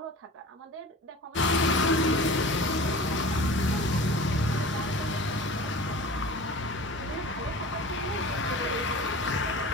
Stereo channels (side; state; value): both; normal; correlation 0.38